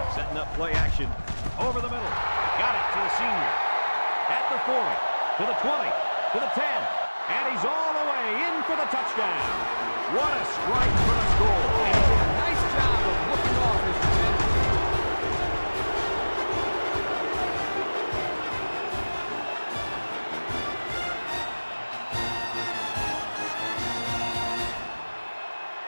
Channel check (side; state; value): both; inverted; correlation -1.00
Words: Setting up play action over the middle. Got it to the senior. At the 40, to the 20, to the 10. And he's all the way in for the touchdown. What a strike for the score. And he did a nice job of looking off his defender.